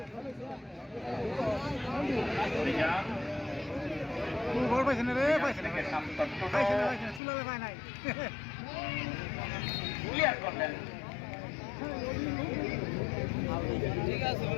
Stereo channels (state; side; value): drops out; right; at 7.2 s